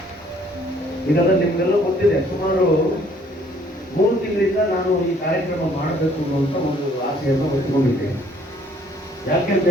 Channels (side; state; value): both; normal; correlation 0.61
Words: ಈಗಾಗಲೇ ನಿಮಗೆಲ್ಲ ಗೊತ್ತಿದೆ, ಸುಮಾರು 3 ತಿಂಗಳಿಂದ ನಾನು ಈ ಕಾರ್ಯಕ್ರಮ ಮಾಡಬೇಕು ಅನ್ನುವಂಥ ಒಂದು ಆಸೆಯನ್ನು ಹೊತ್ತುಕೊಂಡಿದ್ದೇನೆ. ಯಾಕೆಂತ